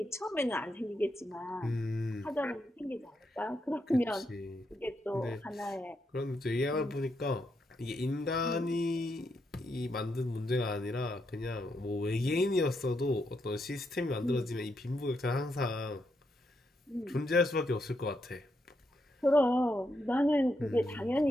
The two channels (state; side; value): normal; both; correlation 0.81